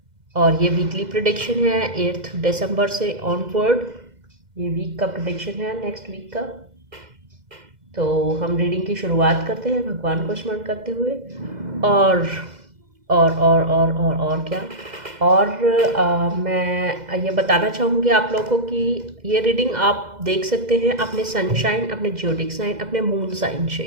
और ये वीकली प्रिडिक्शन है 8 दिसंबर से ऑनवर्ड। ये वीक का प्रिडिक्शन है, नेक्स्ट वीक का। तो हम रीडिंग की शुरुआत करते हैं भगवान को स्मरण करते हुए। और और क्या। और मैं ये बताना चाहूँगी आप लोगों को कि ये रीडिंग आप देख सकते हैं अपने सनशाइन, अपने ज्योडिक साइन, अपने मून साइन से।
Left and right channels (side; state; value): left; late; 2.0 ms